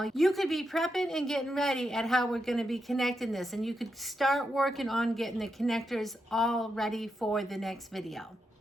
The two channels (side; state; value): both; normal; correlation 0.85